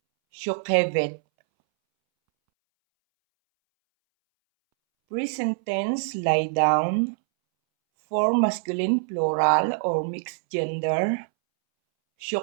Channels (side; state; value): left; silent; 62 dB below the other